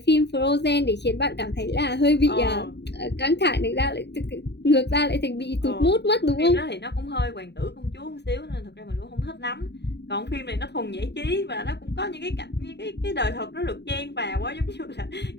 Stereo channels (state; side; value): late; right; 0.50 ms